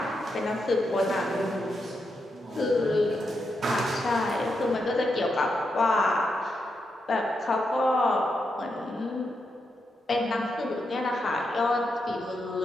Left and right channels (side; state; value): both; normal; correlation 0.84